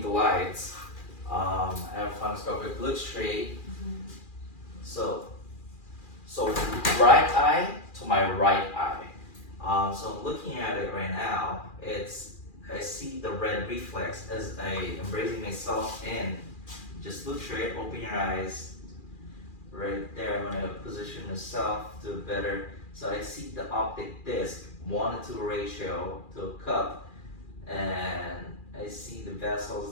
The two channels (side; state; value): right; late; 2.4 ms